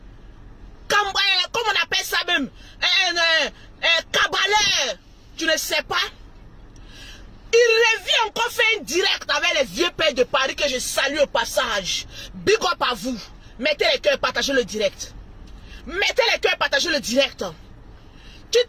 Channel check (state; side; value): identical; both; correlation 1.00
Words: comment on appelle ça même, cabaleur, tu ne sais pas. Il revient encore faire un direct avec les vieux pères de Paris que je salue au passage. Big up à vous. Mettez les cœurs, partagez le direct. Mettez les cœurs, partagez le direct. Tu